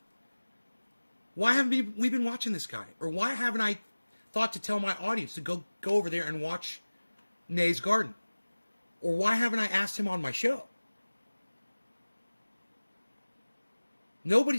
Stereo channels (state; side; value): inverted; both; correlation -1.00